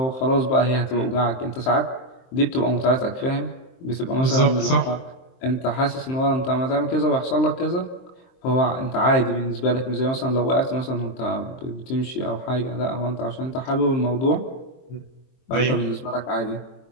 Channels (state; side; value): late; right; 23 ms